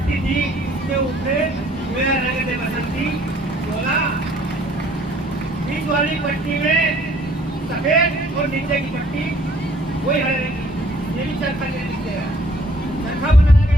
थी, उसके ऊपर मेरा रंग दे बसंती बोला, बीच वाली पट्टी में सफेद और नीचे की पट्टी वही हरे रंग की, ये भी चरखा चरखा बनाया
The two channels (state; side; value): normal; both; correlation 0.59